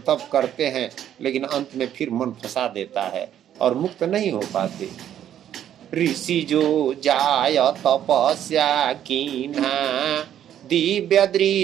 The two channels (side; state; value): left; quieter; 10.5 dB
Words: तप करते हैं, लेकिन अंत में फिर मन फंसा देता है और मुक्त नहीं हो पाते। ऋषि जो जाय तपस्या कीन्हा, दिव्य